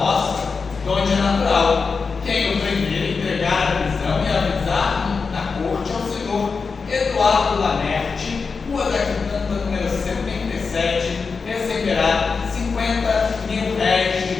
de onde é natural. Quem o primeiro entregar a prisão e avisar na corte ao senhor Eduardo Lamerte, Rua da Quitanda, número 77, receberá 50 mil réis de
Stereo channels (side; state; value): right; quieter; 4.9 dB